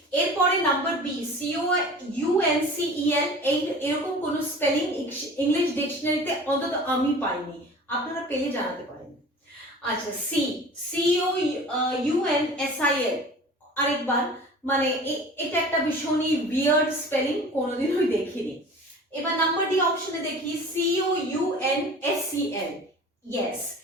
এরপরে নাম্বার বি COUNCEL, এরকম কোন স্পেলিং ইংলিশ ডিকশনারিতে অন্তত আমি পাইনি, আপনারা পেলে জানাতে পারেন। আচ্ছা, COUNSIL আরেকবার, মানে এটা একটা ভীষণই উইয়ার্ড স্পেলিং, কোনোদিনই দেখিনি। এবার নাম্বার ডি অপশনে দেখি COUNSEL। ইয়েস,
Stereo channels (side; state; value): both; normal; correlation 0.41